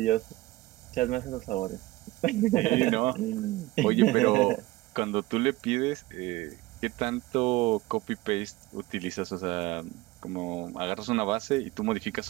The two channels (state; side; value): quieter; left; 19.3 dB